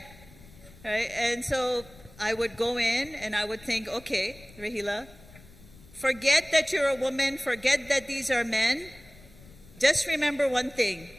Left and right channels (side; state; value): left; noise; rumble, 22 dB below the sound